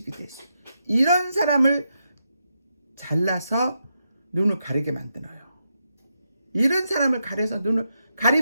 될 수도 있고, 이런 사람을 잘라서 눈을 가리게 만들어요. 이런 사람을 가려서 눈을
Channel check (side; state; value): both; inverted; correlation -0.84